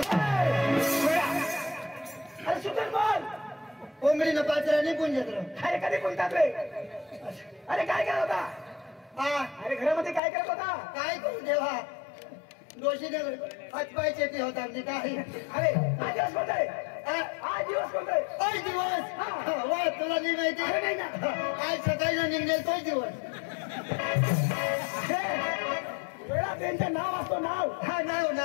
अरे सुधर बोल. कोंबडी ना पाचरा नाही पुंजत रे. अरे कधी कोणतात रे? अरे काय करत होता? हा अरे घरामध्ये काय करत होता? काय करू देवा, दोषीने हातपाय चेपी होता म्हणजे काय. अरे आज दिवस कोणताय? आज दिवस कोणताय? तोच दिवस. वा तुला नाही माहिती. अरे नाही ना. आज सकाळी निघेल तोच दिवस. वेळा त्यांचं नाव असतो नाव. हा नाव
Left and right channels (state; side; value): drops out; right; at 10.2 s